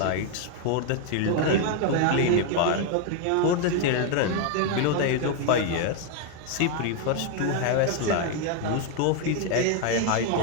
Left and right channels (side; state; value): both; different; correlation 0.00